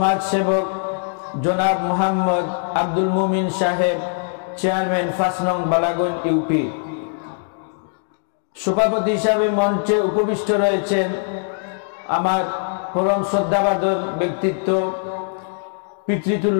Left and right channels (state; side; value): silent; right; digital silence